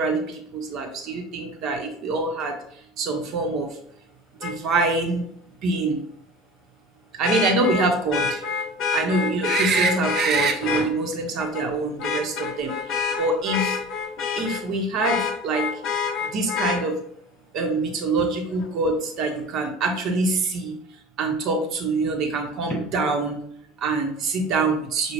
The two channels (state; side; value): normal; both; correlation 0.37